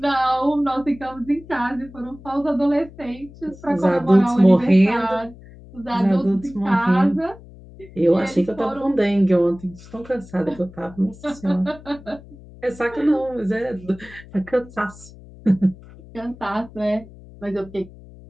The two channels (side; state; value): left; noise; hum, 20 dB below the sound